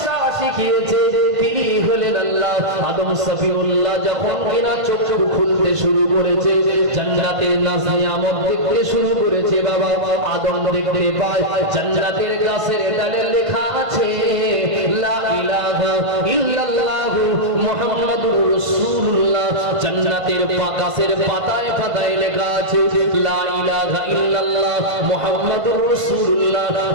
শিখিয়েছে, তিনি হলেন আল্লাহ। আদম সফিউল্লাহ যখন কিনা চোখ খুলতে শুরু করেছে, জান্নাতের নাজ নিয়ামত দেখতে শুরু করেছে, বাবা আদম দেখতে পায় জান্নাতের গাছের ডালে লেখা আছে লা ইলাহা ইল্লাল্লাহু মুহাম্মাদুর রাসূলুল্লাহ। জান্নাতের গাছের পাতায় পাতায় লেখা আছে লা ইলাহা ইল্লাল্লাহ মুহাম্মাদুর রাসূলুল্লাহ।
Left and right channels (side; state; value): left; late; 1.5 ms